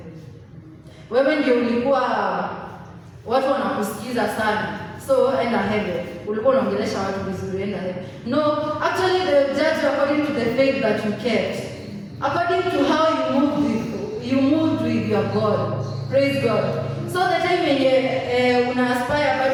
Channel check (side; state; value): both; identical; correlation 1.00